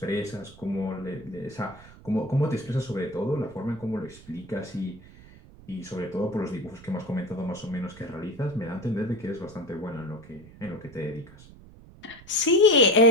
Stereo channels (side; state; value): right; noise; rumble, 20 dB below the sound